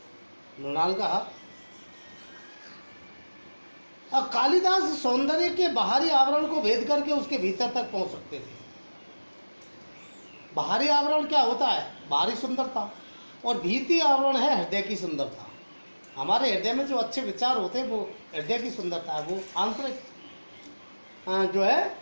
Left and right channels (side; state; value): both; inverted; correlation -1.00